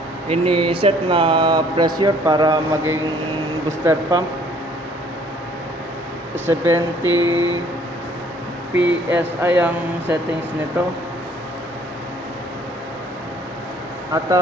ini-set na pressure para maging booster pump. 70 PSI ang settings nito. At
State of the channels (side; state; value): both; normal; correlation 0.59